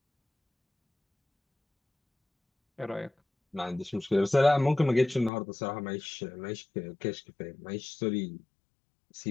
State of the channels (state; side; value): drops out; right; at 5.3 s